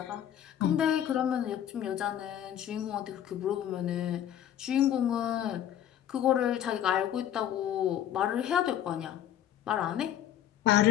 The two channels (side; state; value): right; quieter; 10.7 dB